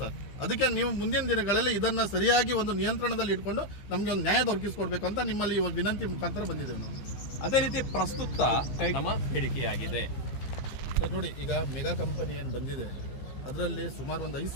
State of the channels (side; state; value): right; late; 15 ms